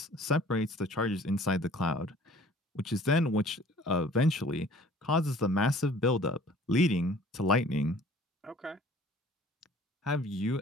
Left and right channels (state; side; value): normal; both; correlation 0.51